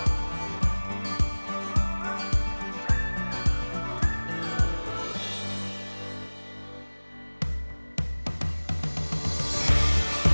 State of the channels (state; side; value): inverted; both; correlation -1.00